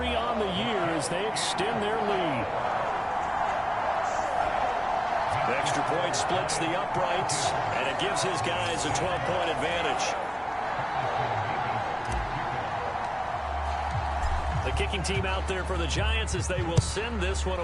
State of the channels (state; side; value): identical; both; correlation 1.00